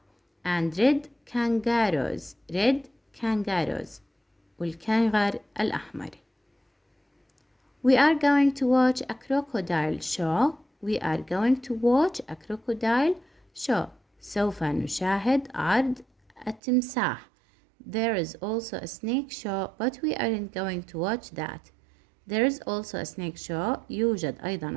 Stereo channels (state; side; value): drops out; left; at 16.6 s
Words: and red kangaroos والكنغر الأحمر. We are going to watch a crocodile show. سوف نشاهد عرض التمساح. There is also a snake show, but we aren't going to watch that. There is also a snake show. يوجد